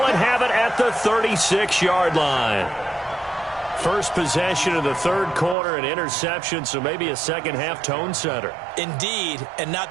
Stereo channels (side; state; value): left; drops out; at 5.6 s